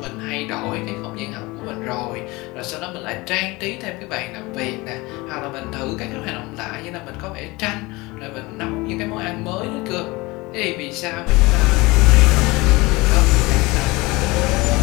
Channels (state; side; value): quieter; right; 22.8 dB